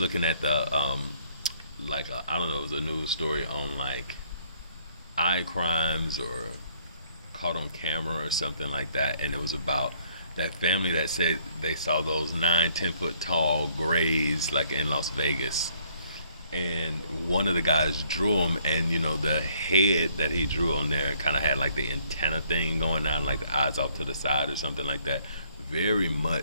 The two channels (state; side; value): inverted; both; correlation -0.64